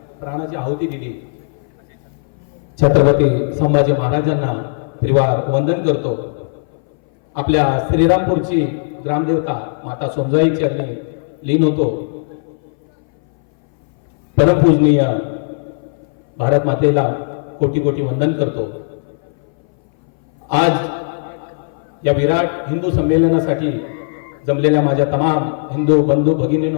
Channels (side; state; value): right; silent; 61 dB below the other